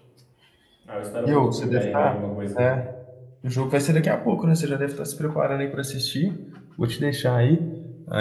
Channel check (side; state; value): both; identical; correlation 1.00